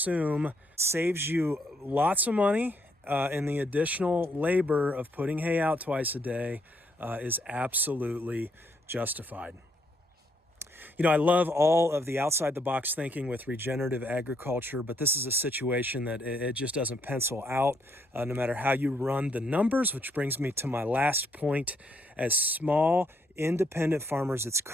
saves you lots of money, and the additional labor of putting hay out twice a day is absolutely justified. You know, I love all of the outside-the-box thinking with regenerative agriculture, but this is a situation that it just doesn't pencil out no matter how you run the numbers, which brings me to my last point. As small, independent farmers, it's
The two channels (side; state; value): both; normal; correlation 0.72